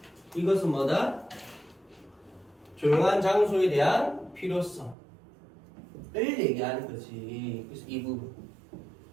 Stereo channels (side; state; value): left; drops out; at 5.0 s